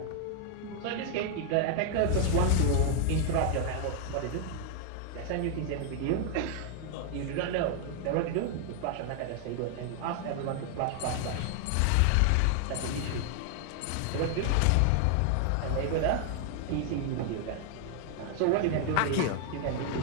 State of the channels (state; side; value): different; both; correlation 0.00